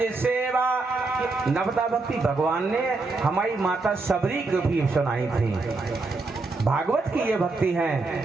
सेवा। नवदा भक्ति भगवान ने हमारी माता सबरी को भी सुनाई थी। भागवत की ये भक्ति है,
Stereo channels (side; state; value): left; quieter; 3.6 dB